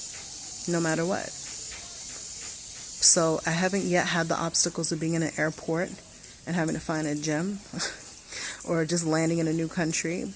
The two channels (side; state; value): both; identical; correlation 1.00